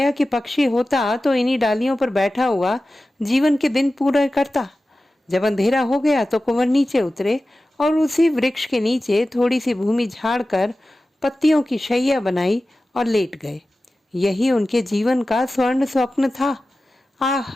कि पक्षी होता तो इन्हीं डालियों पर बैठा हुआ जीवन के दिन पूरे करता। जब अंधेरा हो गया तो कुंवर नीचे उतरे और उसी वृक्ष के नीचे थोड़ी सी भूमि झाड़ कर पत्तियों की शैया बनाई और लेट गए। यही उनके जीवन का स्वर्ण स्वप्न था। आह,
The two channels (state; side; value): normal; both; correlation 0.95